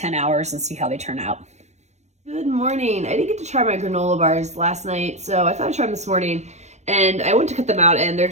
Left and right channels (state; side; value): late; left; 0.33 ms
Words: hours and see how they turn out. Good morning. I didn't get to try my granola bars last night, so I thought I'd try them this morning. And I went to cut them out, and they're